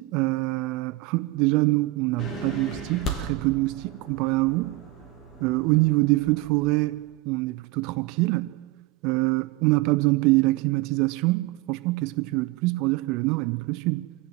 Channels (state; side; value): quieter; left; 18.4 dB